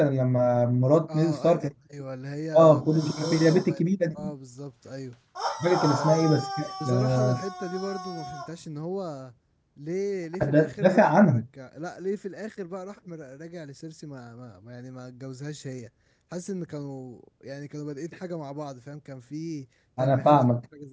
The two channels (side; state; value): both; identical; correlation 1.00